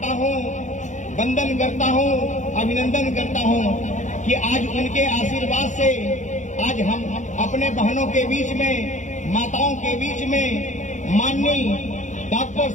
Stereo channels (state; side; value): late; right; 0.35 ms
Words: हूं, वंदन करता हूं, अभिनंदन करता हूं कि आज उनके आशीर्वाद से आज हम अपने बहनों के बीच में, माताओं के बीच में माननीय डॉक्टर